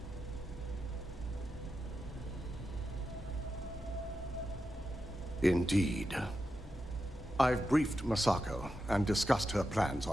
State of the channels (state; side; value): normal; both; correlation 0.89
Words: Indeed. I've briefed Masako and discussed her plans